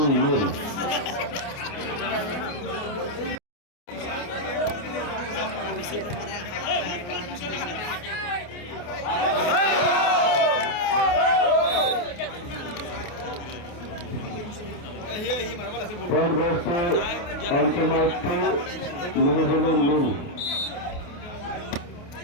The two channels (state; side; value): late; right; 28 ms